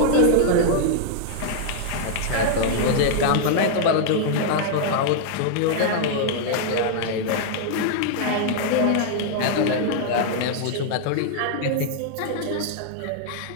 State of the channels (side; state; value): both; different; correlation -0.01